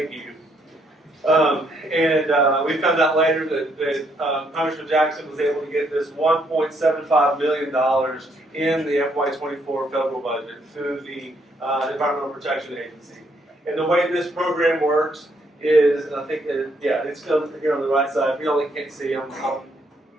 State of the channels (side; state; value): both; normal; correlation 0.72